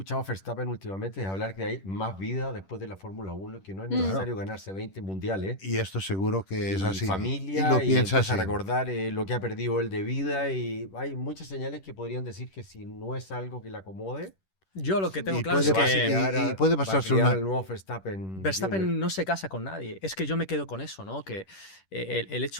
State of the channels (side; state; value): right; late; 10 ms